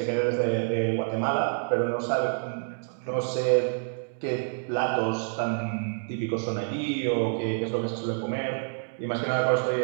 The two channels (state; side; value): silent; left; digital silence